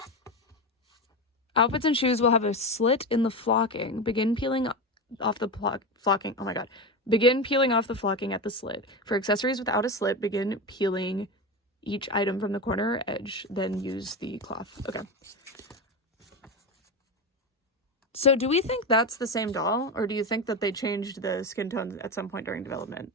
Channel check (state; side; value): normal; both; correlation 0.19